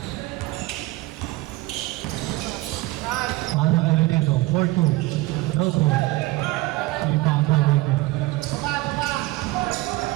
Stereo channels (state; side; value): quieter; left; 19.1 dB